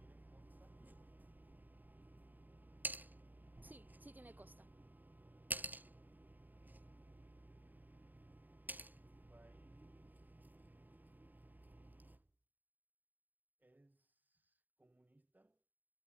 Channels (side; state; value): left; late; 0.087 ms